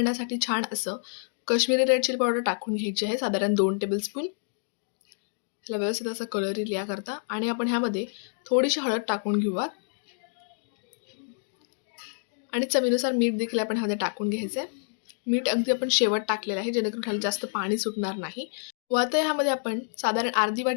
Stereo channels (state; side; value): silent; right; digital silence